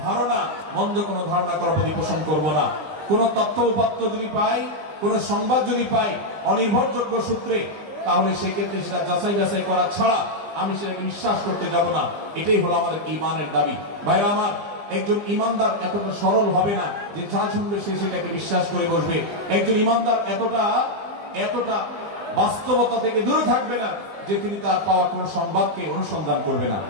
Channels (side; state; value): left; late; 20 ms